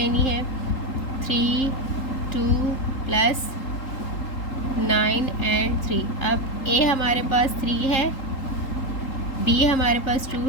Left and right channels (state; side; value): late; right; 3.8 ms